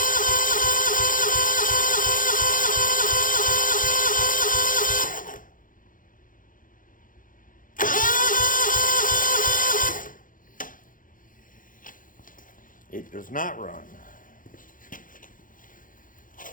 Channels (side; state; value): right; late; 0.39 ms